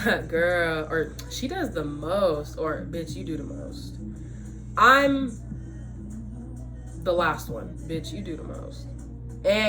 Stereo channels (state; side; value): identical; both; correlation 1.00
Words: Girl, or she does the most, or bitch, you do the most. I'm the last one. Bitch, you do the most.